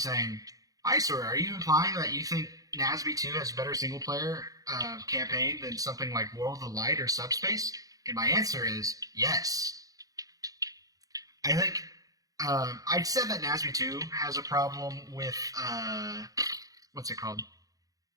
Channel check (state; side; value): late; left; 0.17 ms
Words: Eyesore, are you implying that you think NASB 2 has a better single player campaign than something like World of Light or Subspace? And my answer is yes. I think I said that NASB 2 has a problem with what's it called?